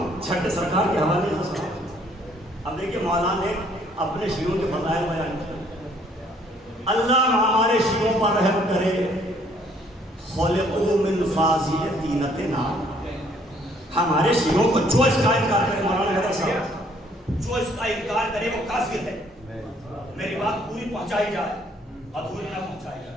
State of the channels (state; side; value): normal; both; correlation 0.63